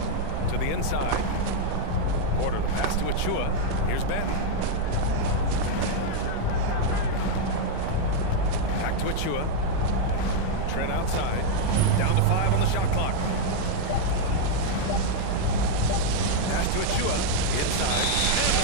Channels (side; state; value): both; different; correlation 0.00